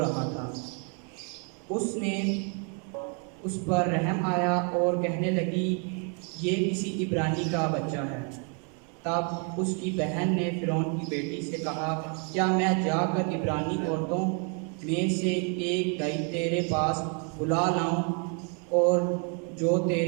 تھا۔ اس نے اس پر رحم آیا اور کہنے لگی، یہ کسی عبرانی کا بچہ ہے۔ تب اس کی بہن نے فرعون کی بیٹی سے کہا، کیا میں جا کر عبرانی عورتوں میں سے ایک گئی تیرے پاس بلا لاؤں، اور جو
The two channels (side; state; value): left; quieter; 38.4 dB